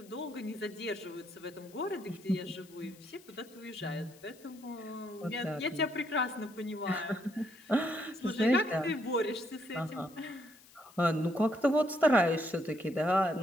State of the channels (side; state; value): left; noise; hiss, 24 dB below the sound